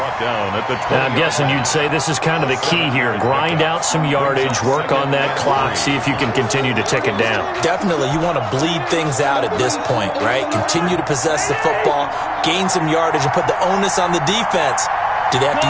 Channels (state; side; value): identical; both; correlation 1.00